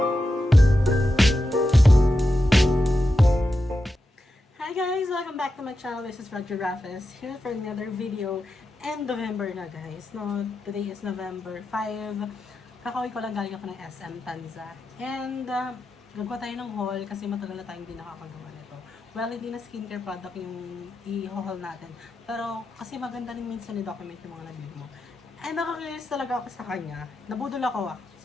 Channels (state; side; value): normal; both; correlation 0.89